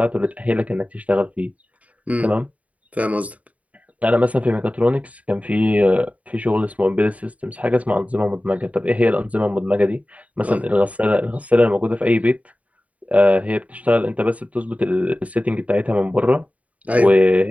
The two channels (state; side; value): late; left; 0.069 ms